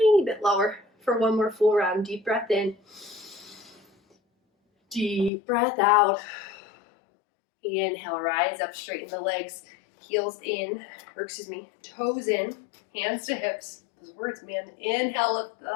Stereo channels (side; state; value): right; drops out; at 5.3 s